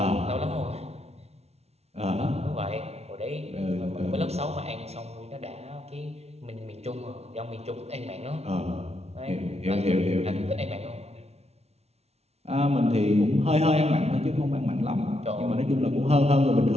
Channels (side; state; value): left; late; 0.31 ms